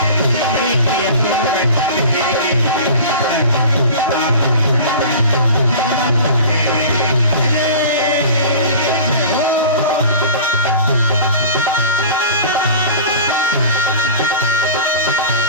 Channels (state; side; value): inverted; both; correlation -0.38